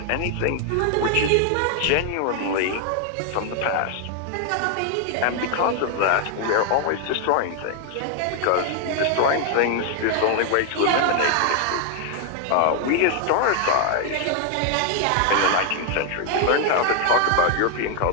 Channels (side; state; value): both; different; correlation 0.00